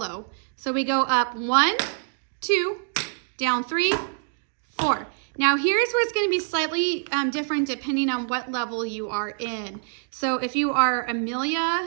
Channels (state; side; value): silent; left; digital silence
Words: So we go up 1, 2, down 3, 4. Now here's where it's going to be slightly different depending on what level you are in. So if you are